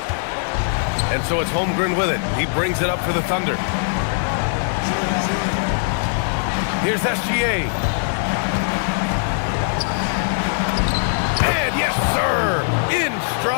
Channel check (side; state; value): right; silent; digital silence